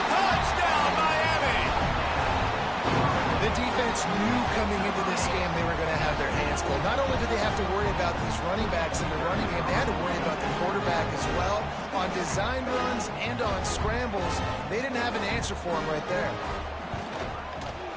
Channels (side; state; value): both; identical; correlation 1.00